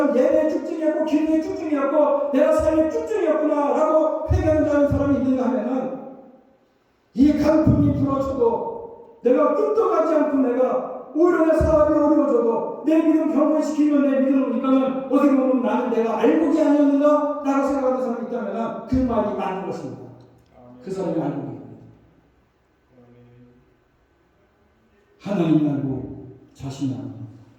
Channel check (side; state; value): both; identical; correlation 1.00